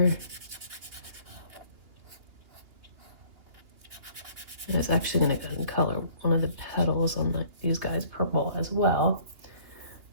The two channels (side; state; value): left; late; 2.9 ms